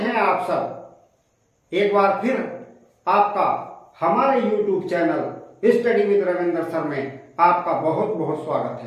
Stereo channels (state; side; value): identical; both; correlation 1.00